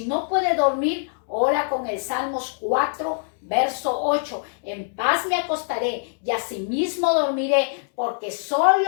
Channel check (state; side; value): silent; right; digital silence